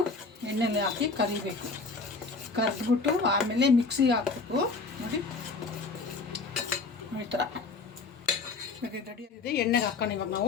ಎಣ್ಣೆಲಿ ಹಾಕಿ ಕರಿಬೇಕು. ಕರೆದ್ಬಿಟ್ಟು ಆಮೇಲೆ ಮಿಕ್ಸಿಗೆ ಹಾಕ್ಬೇಕು. ನೋಡಿ ಈ ಥರ ಇವಾಗ ಇದು ರೆಡಿ ಆಗಿದೆ. ಎಣ್ಣೆಗೆ ಹಾಕೋಣ ಇವಾಗ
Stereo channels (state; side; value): quieter; right; 4.1 dB